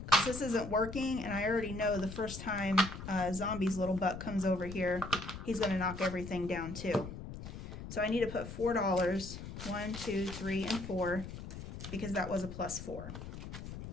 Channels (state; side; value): noise; left; rumble, 10 dB below the sound